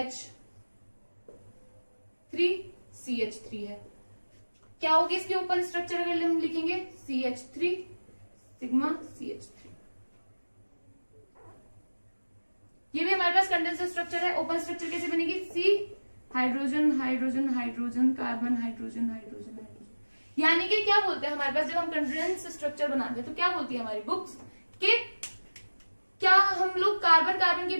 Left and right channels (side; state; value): both; inverted; correlation -1.00